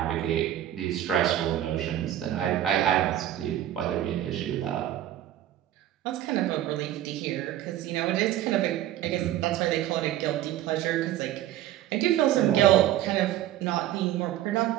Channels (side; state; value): left; quieter; 12.7 dB